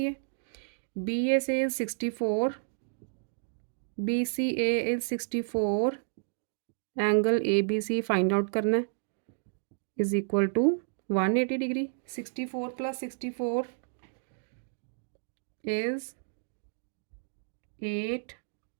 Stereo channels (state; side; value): silent; left; digital silence